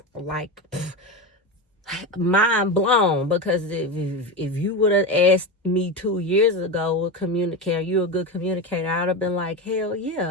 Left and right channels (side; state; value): both; normal; correlation 0.19